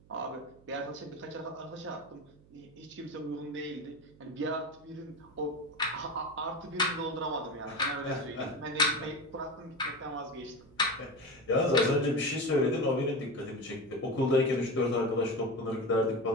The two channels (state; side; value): noise; right; hum, 26 dB below the sound